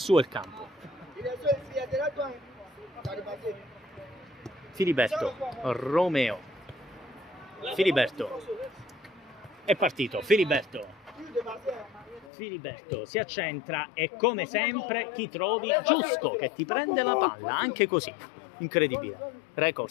il campo. Filiberto, Romeo, Filiberto, è partito, Filiberto si accentra e come sempre chi trovi? Giusco che ti prende la palla, anche così, incredibile.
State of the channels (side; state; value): right; drops out; at 12.3 s